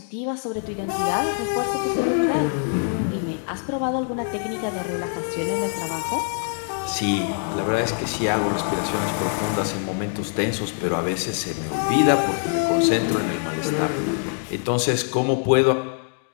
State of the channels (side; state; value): right; silent; 57 dB below the other